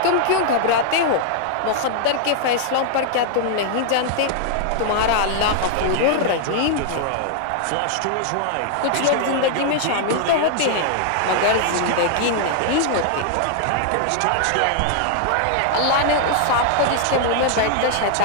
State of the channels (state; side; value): different; both; correlation -0.01